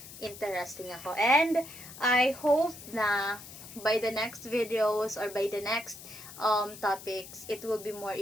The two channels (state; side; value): noise; left; hiss, 15 dB below the sound